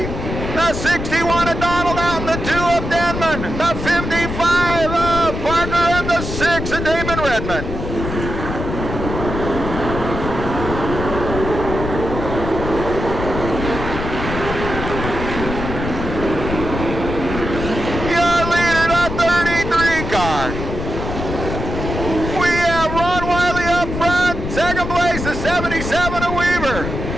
the 61 of Donald Out, the 2 of Denman, the 55 of Parker, and the 6 of Damon Redmond. Your leader, the 33 car. We have Ron Wiley up front, second place, the 77 of Weaver,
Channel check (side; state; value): left; noise; rumble, 5 dB below the sound